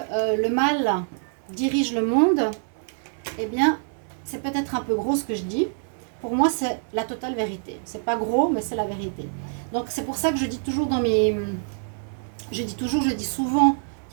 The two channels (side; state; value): left; silent; 62 dB below the other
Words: le mal dirige le monde, eh bien c'est peut-être un peu gros ce que je dis. Pour moi c'est la totale vérité. C'est pas gros mais c'est la vérité. Donc c'est pour ça que je dis toujours je dis souvent